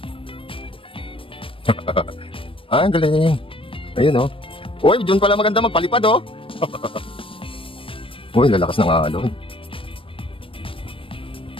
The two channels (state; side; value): late; right; 0.26 ms